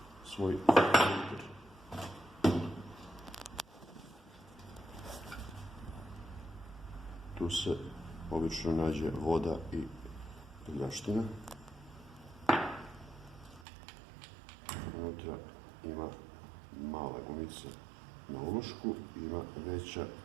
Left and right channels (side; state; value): left; drops out; at 13.7 s